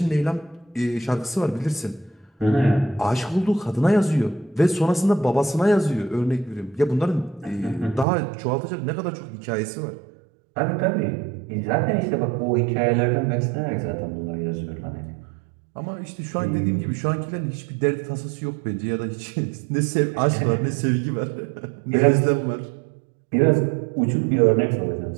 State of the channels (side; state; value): left; drops out; at 8.1 s